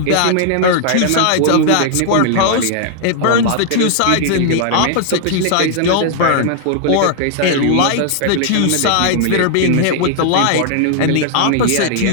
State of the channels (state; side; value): different; both; correlation -0.01